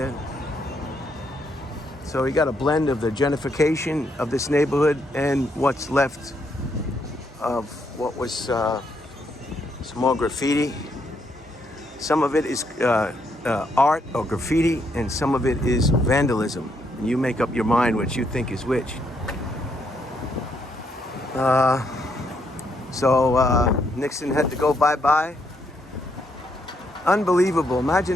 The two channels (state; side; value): normal; both; correlation 0.75